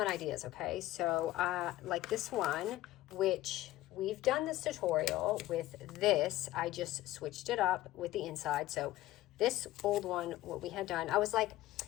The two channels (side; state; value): right; quieter; 15.9 dB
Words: ideas, okay? So like this one, which we've done this tutorial with this, I just switched it up with the inside. So this old one, what we had done, I was like,